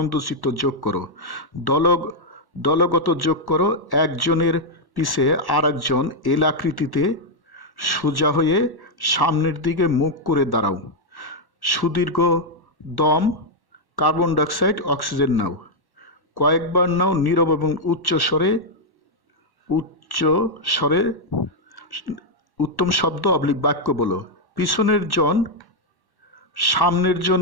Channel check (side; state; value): right; late; 1.1 ms